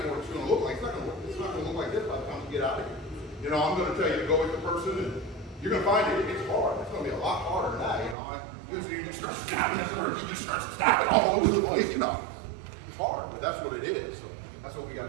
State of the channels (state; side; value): drops out; left; at 8.2 s